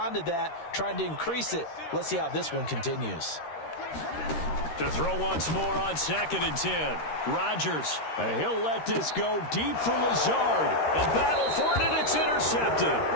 to that, trying to increase it. Let's see how this one continues. To throw once more on 2nd and 10. Rodgers. He'll let this go deep for Lazard. A battle for it, and it's intercepted.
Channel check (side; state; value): right; late; 13 ms